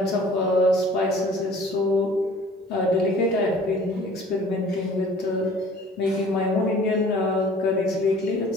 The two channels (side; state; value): both; normal; correlation 0.50